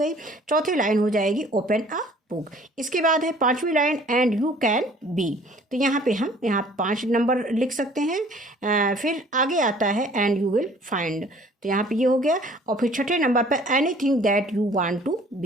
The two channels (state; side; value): normal; both; correlation 0.53